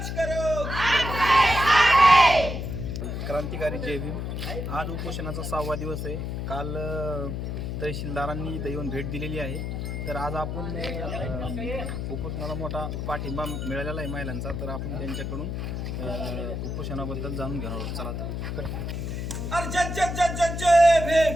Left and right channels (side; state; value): left; noise; hum, 4 dB below the sound